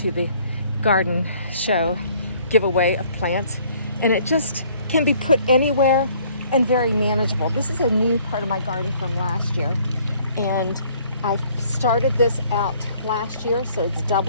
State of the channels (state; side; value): inverted; both; correlation -0.60